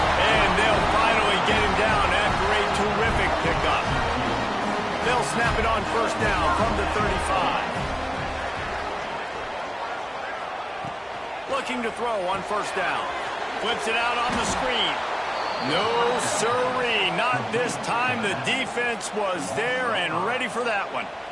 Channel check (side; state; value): both; identical; correlation 1.00